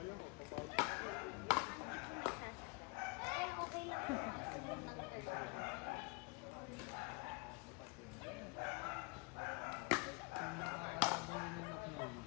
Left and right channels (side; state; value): right; quieter; 29.3 dB